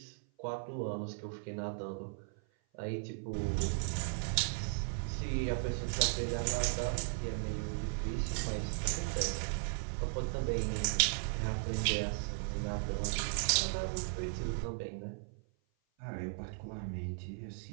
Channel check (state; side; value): silent; left; 53 dB below the other